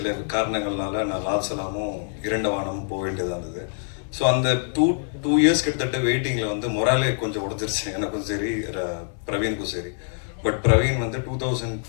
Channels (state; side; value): silent; right; 61 dB below the other